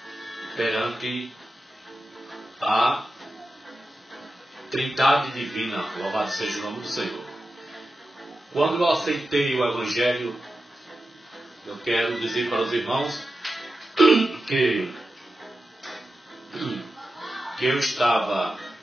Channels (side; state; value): both; normal; correlation 0.92